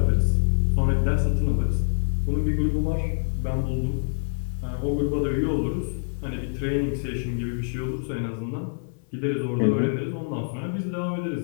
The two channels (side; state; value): right; silent; 61 dB below the other